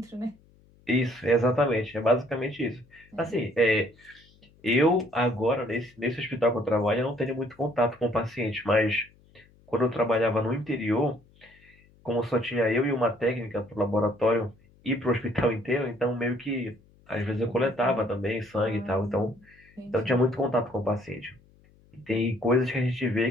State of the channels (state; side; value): noise; left; hum, 29 dB below the sound